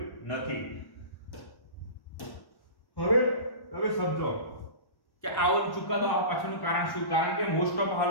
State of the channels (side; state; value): right; late; 1.1 ms